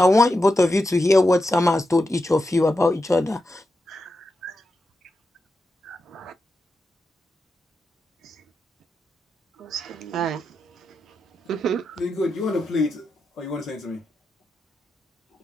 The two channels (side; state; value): both; normal; correlation 0.88